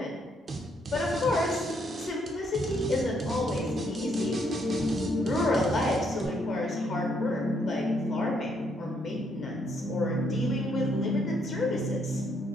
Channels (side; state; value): both; normal; correlation 0.72